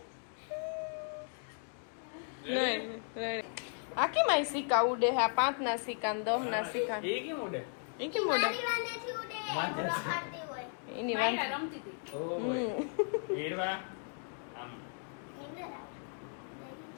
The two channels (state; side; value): silent; right; 54 dB below the other